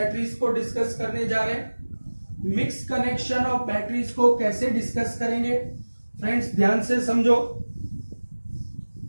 को डिस्कस करने जा रहे हैं। मिक्स कनेक्शन ऑफ बैटरीज को कैसे डिस्कस करेंगे फ्रेंड्स, ध्यान से समझो।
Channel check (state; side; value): inverted; both; correlation -1.00